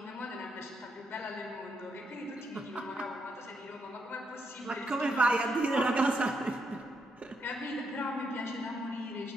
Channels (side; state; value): both; normal; correlation 0.79